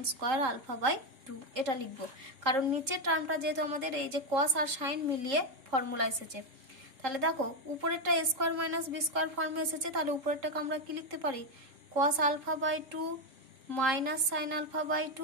square alpha by 2, এটা লিখবো। কারণ নিচের টার্মটা যেহেতু আমাদের এই যে cos আর sin মিলিয়ে ফর্মুলা এসেছে, তাহলে দেখো উপরেরটা a square minus b square ফর্মে এসেছে, তাহলে উপরেরটাকে আমরা কি লিখতে পারি cos alpha by 2 minus sin alpha by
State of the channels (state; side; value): late; left; 3.7 ms